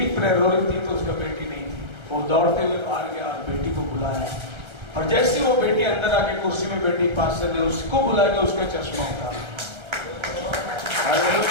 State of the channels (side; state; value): left; late; 1.3 ms